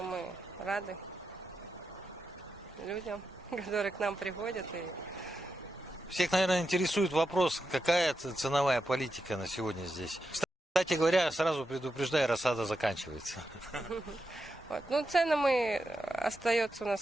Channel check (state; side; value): normal; both; correlation 0.87